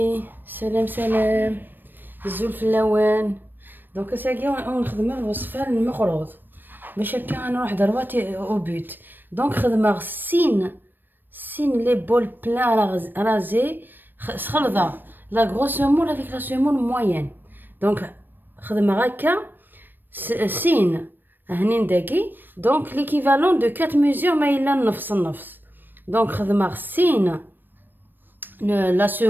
سلام سلام الزول في اللوان. دونك ساقي ونخدم الوصفه المقروض باش هكا نروح درواتي او بوت. دونك خدمه سين لي بول بلان رازي خلطه لا غروس مول افيك لا سيمون موين. دونك خدمه هكا سين هنين داكي. دونك ليكيفالون دو 4 ميزور ما الا نفس. دونك خدمه سين la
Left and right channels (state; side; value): late; left; 0.093 ms